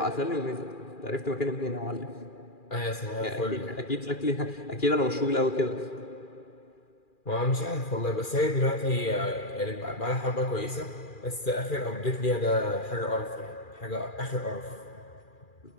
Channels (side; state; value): right; late; 2.4 ms